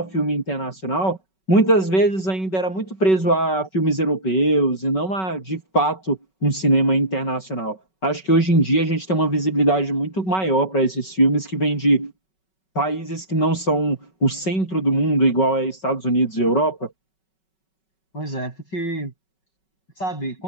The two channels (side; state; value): right; late; 5.3 ms